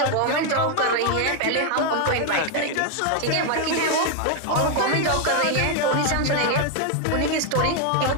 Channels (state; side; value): different; both; correlation 0.01